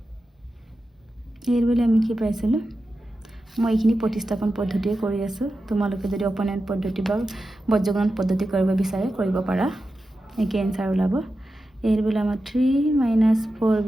এৰ ভেলু আমি কি পাইছিলোঁ মই এইখিনি প্ৰতিস্থাপন পদ্ধতিয়ে কৰি আছোঁ তোমালোকে যদি অপনেণ্ট পদ্ধতি বা বজ্ৰগণন পদ্ধতি কৰিব বিচাৰে কৰিব পাৰা একে এনসাৰ ওলাব এৰ ভেলু আমাৰ 3 -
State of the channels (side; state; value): both; normal; correlation 0.91